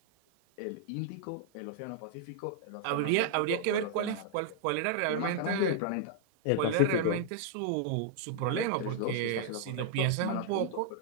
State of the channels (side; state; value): both; different; correlation -0.01